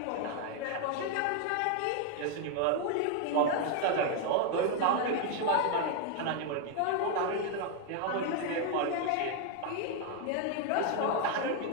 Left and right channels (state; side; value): different; both; correlation 0.00